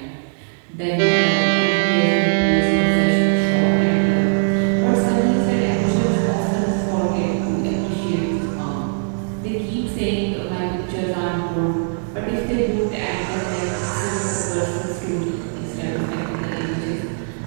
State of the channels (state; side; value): silent; left; digital silence